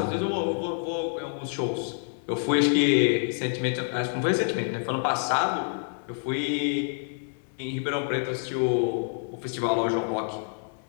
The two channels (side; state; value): right; silent; 60 dB below the other